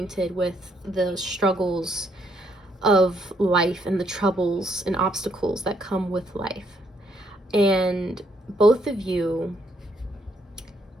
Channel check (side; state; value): both; normal; correlation 0.72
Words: with the struggles of life and the troubles and obstacles that come with life. And both of you